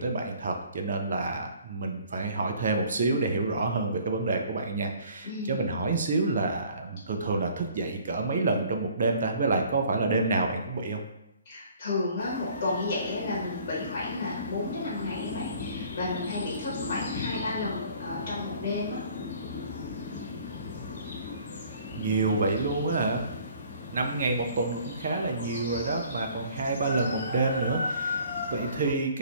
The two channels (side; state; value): both; inverted; correlation -0.55